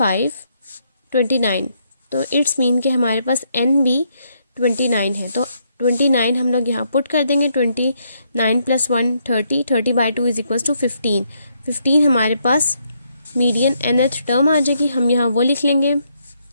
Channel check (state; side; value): inverted; both; correlation -0.75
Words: तो इट्स मीन कि हमारे पास n भी 29 है। तो 29 हम लोग यहाँ पुट कर देंगे, 29 + 1 30 by 2 इज इक्वल्स टू 15 हमारे पास मीडियन nth टर्म आ जाएगी। हम यहाँ वो लिख लेंगे,